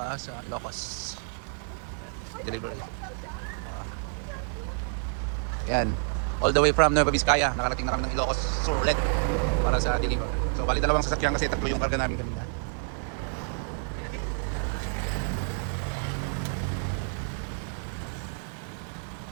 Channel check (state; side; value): silent; left; 59 dB below the other